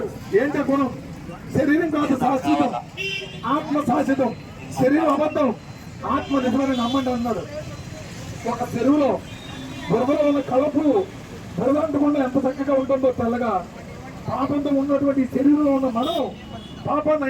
ఏంటి గుణం? శరీరం కాదు శాశ్వతం, ఆత్మ శాశ్వతం. శరీరం అబద్ధం, ఆత్మ నిజమని నమ్మండి అన్నాడు. ఒక చెరువులో బురదలో ఉన్న కలపు బురద అంటకుండా ఎంత చక్కగా ఉంటుందో తెల్లగా, పాపంతో ఉన్నటువంటి శరీరంలో ఉన్న మనం పాపాన్ని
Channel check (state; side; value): identical; both; correlation 1.00